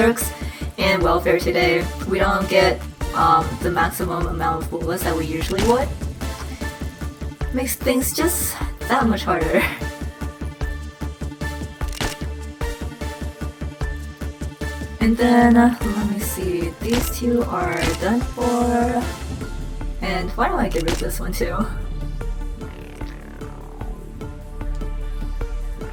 in welfare today, we don't get the maximum amount of bullets that we usually would. Makes things just that much harder. And then, let me see, these two are done for. And why don't I get rid of this one too?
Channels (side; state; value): both; identical; correlation 1.00